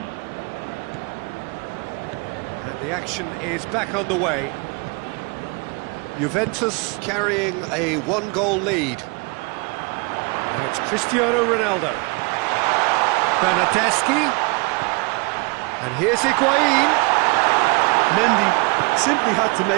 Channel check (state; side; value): quieter; left; 30.1 dB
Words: The action is back underway. Juventus carrying a 1-goal lead. Now it's Cristiano Ronaldo. Bernardeschi. And here's Higuain. Mendy simply had to